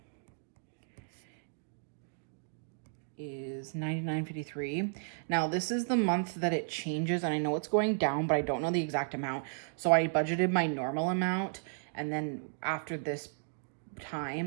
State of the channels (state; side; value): silent; left; digital silence